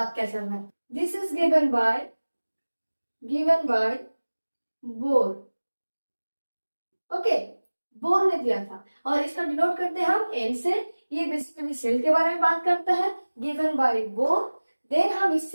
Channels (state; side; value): inverted; both; correlation -1.00